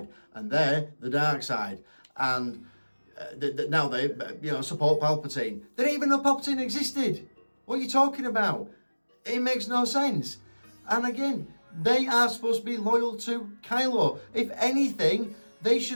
and they're the dark side. And now they support Palpatine. They didn't even know Palpatine existed. What are you talking about? It makes no sense. And again, they are supposed to be loyal to Kylo. If anything, they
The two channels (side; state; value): both; inverted; correlation -1.00